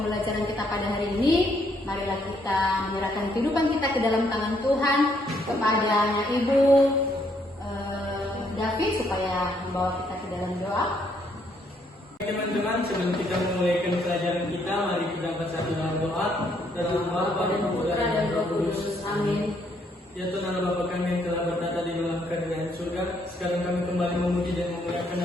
kita pada hari ini, marilah kita menyerahkan kehidupan kita ke dalam tangan Tuhan kepada anak ibu David supaya membawa kita ke dalam doa. Teman-teman, sebelum kita memulaikan pelajaran kita, mari kita bersatu dalam doa. Dalam nama Bapa dan Putra dan Roh Kudus. Amin. Ya Tuhan Allah Bapa kami yang telah bertata di dalam kerajaan surga, sekarang kami kembali memuji dan memuliakan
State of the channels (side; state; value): both; normal; correlation 0.71